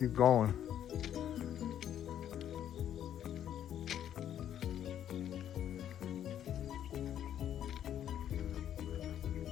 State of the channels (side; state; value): right; quieter; 10.4 dB